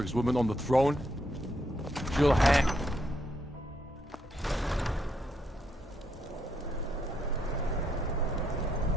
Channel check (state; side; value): normal; both; correlation 0.76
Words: woman on the throne? She'll hang...